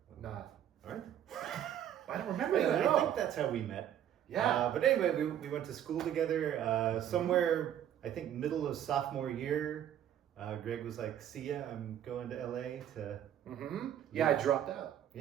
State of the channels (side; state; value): left; quieter; 10.5 dB